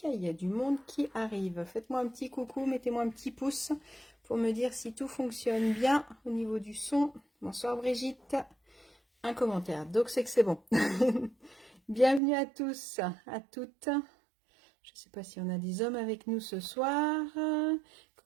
Il y a du monde qui arrive. Faites-moi un petit coucou, mettez-moi un petit pouce pour me dire si tout fonctionne bien au niveau du son. Bonsoir Brigitte. Un commentaire, donc c'est que c'est bon. Bienvenue à tous, à toutes. Je ne sais pas si on a des hommes avec nous ce soir.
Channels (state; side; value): drops out; left; at 12.2 s